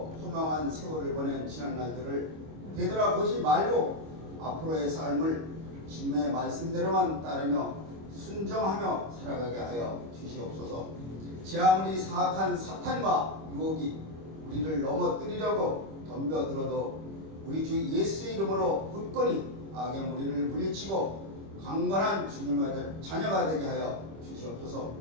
허망한 세월을 보낸 지난 날들을 되돌아보지 말고 앞으로의 삶을 주님의 말씀대로만 따르며 순종하며 살아가게 하여 주시옵소서. 제 아무리 사악한 사탄과 유혹이 우리를 넘어뜨리려고 덤벼들어도 우리 주 예수의 이름으로 굳건히 악의 무리를 물리치고 강건한 주님의 자녀가 되게 하여 주시옵소서.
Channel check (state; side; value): late; left; 25 ms